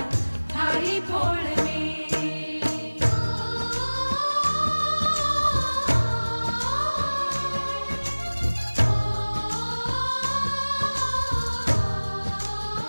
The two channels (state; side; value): inverted; both; correlation -1.00